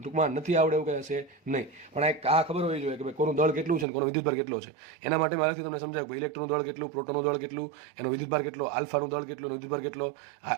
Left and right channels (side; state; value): left; drops out; at 3.9 s